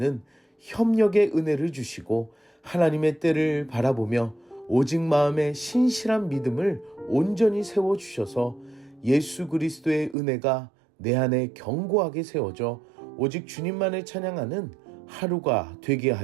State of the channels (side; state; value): left; drops out; at 10.2 s